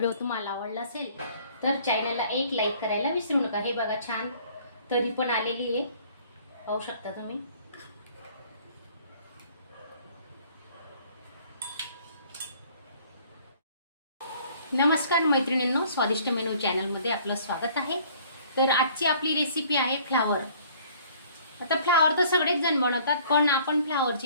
तुम्हाला आवडला असेल तर चॅनलला एक लाईक करायला विसरू नका। हे बघा छान तरी पण आलेली आहे, पाहू शकता तुम्ही। नमस्कार मैत्रिणींनो, स्वादिष्ट मेनू चॅनलमध्ये आपलं स्वागत आहे। तर आजची आपली रेसिपी आहे फ्लावर। आता फ्लावर तर सगळेच जण बनवतात, पण आपण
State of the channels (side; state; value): both; inverted; correlation -0.56